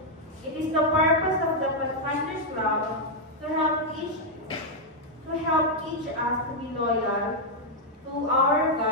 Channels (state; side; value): normal; both; correlation -0.02